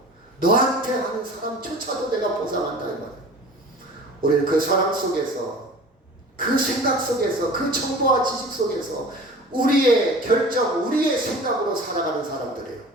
너한테 하는 사람조차도 내가 보상한다 이 말이에요. 우리는 그 사랑 속에서, 그 생각 속에서, 그 정보와 지식 속에서 우리의 결정, 우리의 생각으로 살아가는 사람들이에요.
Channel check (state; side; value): normal; both; correlation 0.41